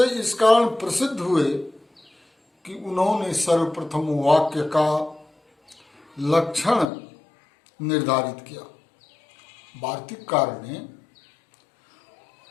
इस कारण प्रसिद्ध हुए कि उन्होंने सर्वप्रथम वाक्य का लक्षण निर्धारित किया। वार्तिककार ने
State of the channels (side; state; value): right; drops out; at 6.9 s